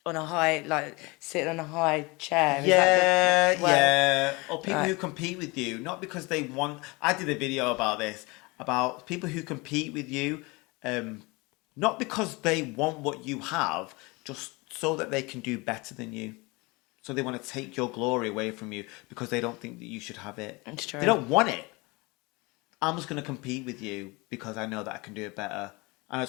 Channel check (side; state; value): right; quieter; 25.6 dB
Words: On a high, like sitting on a high chair. Yeah. Or people who compete with you, not because they want. I did a video about this, about people who compete with you, not because they want what you have, just so that they can do better than you. So they want to take your glory away from you because they don't think that you should have it. It's true. They don't want it. I'm just going to compete with you because I know that I can do it better. I